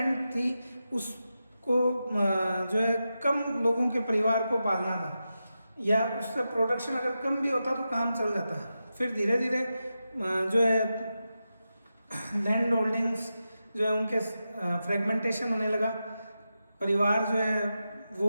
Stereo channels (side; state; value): both; inverted; correlation -0.90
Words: थी उसको जो है कम लोगों के परिवार को पालना था, या उससे प्रोडक्शन अगर कम भी होता तो काम चल जाता। फिर धीरे धीरे जो है लैंड होल्डिंग्स जो है उनके फ्रेगमेंटेशन होने लगा, परिवार जो है